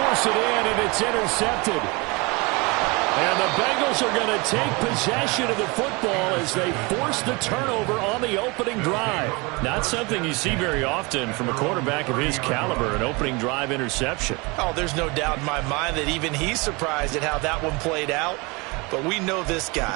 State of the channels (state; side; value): quieter; left; 27.0 dB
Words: it in, and it's intercepted. And the Bengals are going to take possession of the football as they force the turnover on the opening drive. Not something you see very often from a quarterback of his caliber, an opening drive interception. Oh, there's no doubt in my mind that even he's surprised at how that one played out. But we know this